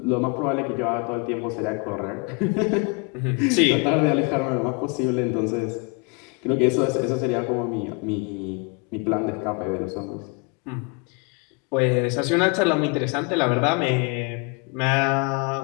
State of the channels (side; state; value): right; quieter; 32.3 dB